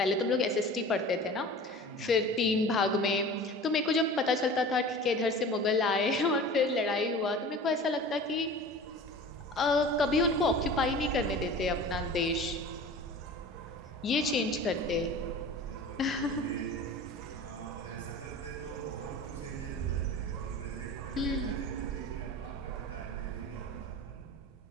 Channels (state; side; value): normal; both; correlation 0.38